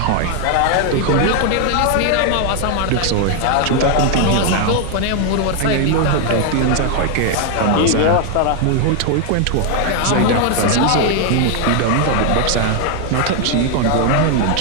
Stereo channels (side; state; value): both; different; correlation 0.00